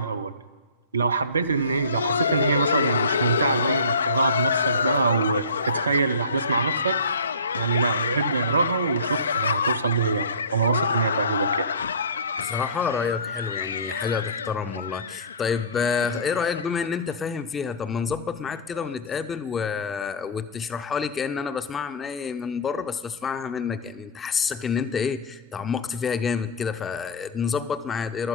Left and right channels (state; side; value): inverted; both; correlation -0.30